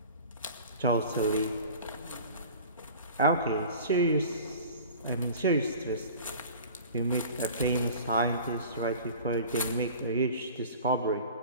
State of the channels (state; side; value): inverted; both; correlation -0.42